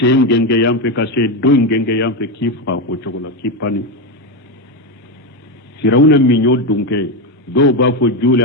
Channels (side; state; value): both; normal; correlation 0.11